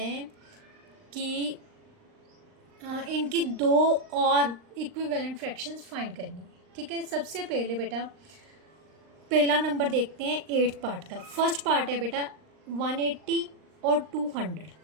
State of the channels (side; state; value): left; late; 39 ms